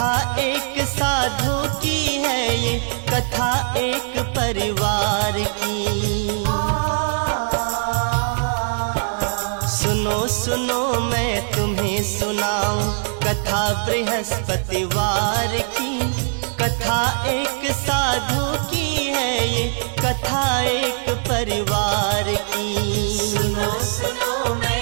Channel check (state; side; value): silent; left; digital silence